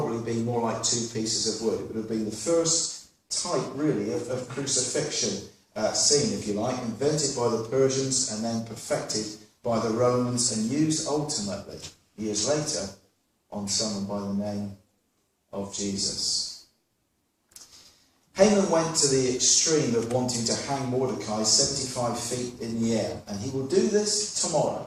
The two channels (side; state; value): both; identical; correlation 1.00